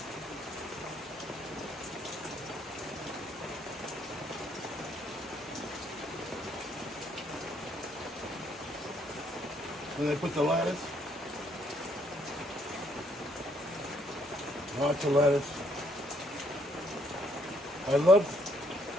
Then I put the lettuce. Lots of lettuce. I love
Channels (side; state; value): both; normal; correlation 0.69